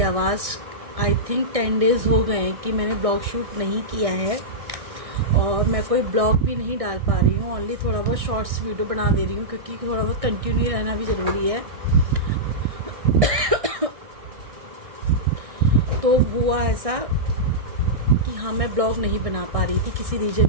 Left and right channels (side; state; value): left; late; 1.6 ms